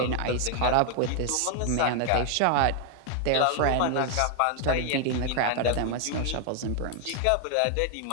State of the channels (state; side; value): different; both; correlation 0.00